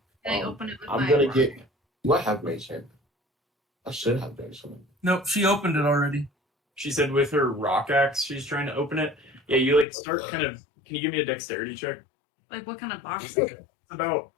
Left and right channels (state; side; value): drops out; right; at 9.9 s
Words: Can I open it with I'm my gonna get. Do I have mage hand? I should have mage hand. Nope, she opened it already. She said with her rock axe, she's trying to open it. Yeah, you like start kind of. Can you give me a dexterity check? Like, what kind of box? It's about